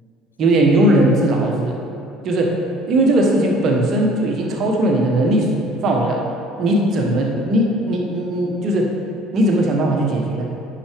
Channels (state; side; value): normal; both; correlation 0.52